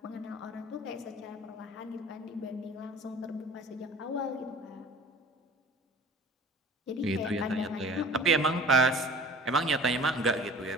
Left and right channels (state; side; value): normal; both; correlation 0.44